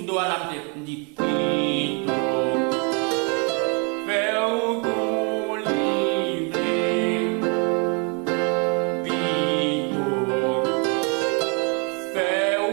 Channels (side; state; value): left; quieter; 35.6 dB